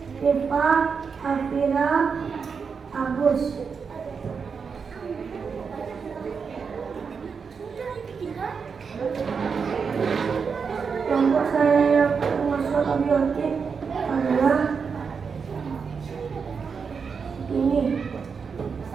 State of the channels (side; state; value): left; quieter; 5.8 dB